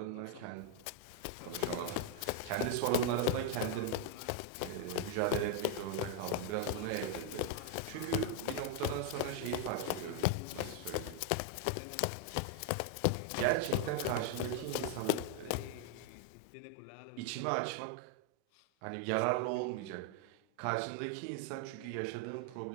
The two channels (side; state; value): both; different; correlation 0.01